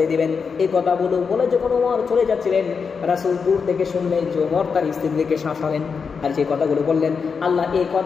দিবেন। এই কথাগুলো বলে যখন ওমর চলে যাচ্ছিলেন, রাসূল দূর থেকে শুনলেন যে ওমর তার স্ত্রীদেরকে শাসালেন। আর যে কথাগুলো বললেন, আল্লাহ এই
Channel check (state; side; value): quieter; right; 5.6 dB